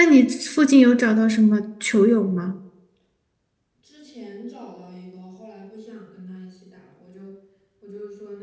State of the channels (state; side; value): identical; both; correlation 1.00